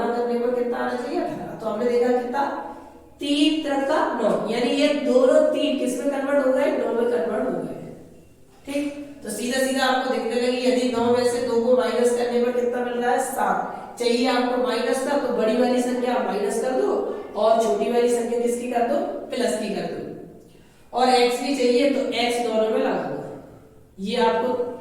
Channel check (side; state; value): both; identical; correlation 1.00